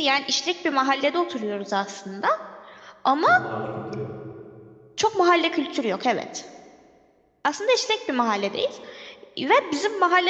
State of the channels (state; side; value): identical; both; correlation 1.00